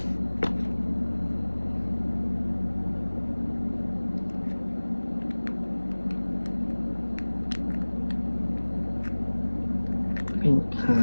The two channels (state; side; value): inverted; both; correlation -1.00